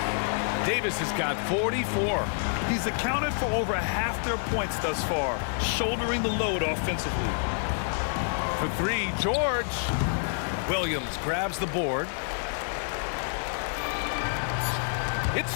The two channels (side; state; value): right; silent; digital silence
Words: Davis has got 44. He's accounted for over half their points thus far, shouldering the load offensively. For three, George. Williams grabs the board. It's